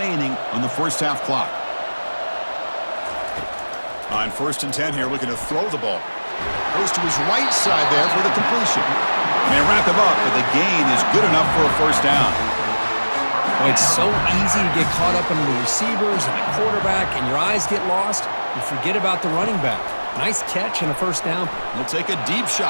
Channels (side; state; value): both; inverted; correlation -1.00